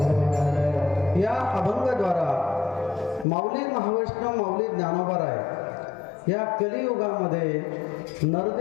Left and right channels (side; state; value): right; drops out; at 3.2 s